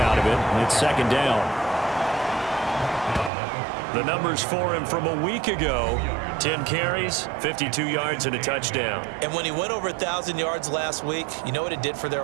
of it. And it's second down. The numbers for him from a week ago: 10 carries, 52 yards, and a touchdown. And when he went over 1,000 yards last week, you know what it did for their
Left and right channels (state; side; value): drops out; left; at 3.3 s